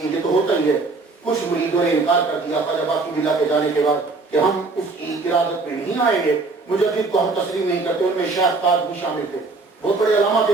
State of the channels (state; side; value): quieter; left; 3.8 dB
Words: یہ تو ہوتا ہی ہے، کچھ مریدوں نے انکار کر دیا خواجہ باقی باللہ کے جانے کے بعد کہ ہم اس کی ارادت میں نہیں آئیں گے، مجدد کو ہم تسلیم نہیں کرتے۔ ان میں شیخ تاج بھی شامل تھے، بہت بڑے علامہ